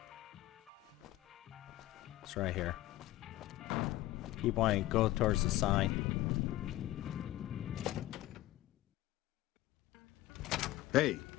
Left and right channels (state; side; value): quieter; right; 16.1 dB